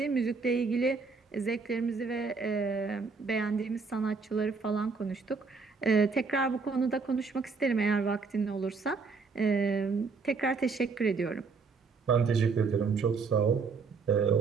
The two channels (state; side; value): quieter; left; 4.7 dB